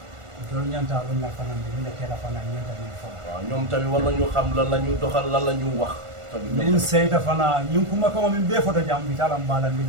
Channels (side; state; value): left; late; 1.4 ms